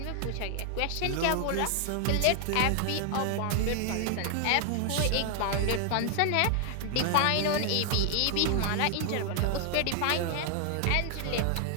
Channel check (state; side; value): different; both; correlation 0.00